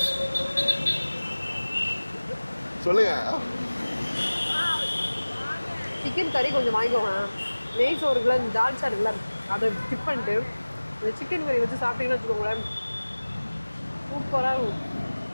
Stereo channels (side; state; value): both; inverted; correlation -1.00